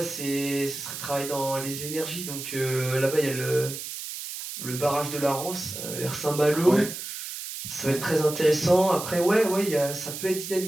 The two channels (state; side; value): noise; right; hiss, 8 dB below the sound